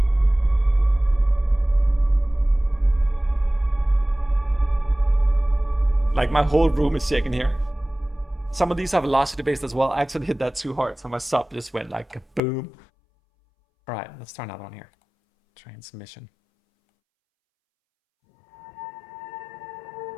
Like my whole room is shaking here. Some of these are velocity based as well. I actually hit that too hard, so my sub just went like boom. All right, let's try another one here. Transmission.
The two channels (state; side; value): drops out; right; at 12.4 s